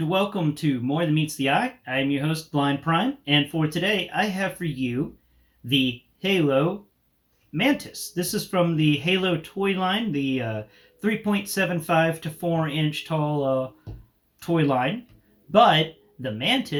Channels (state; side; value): identical; both; correlation 1.00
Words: welcome to More Than Meets the Eye. I am your host, Blind Prime, and for today I have for you the Halo Mantis. This is from the Halo toy line, the 3.75 to 4 inch tall toy line. But the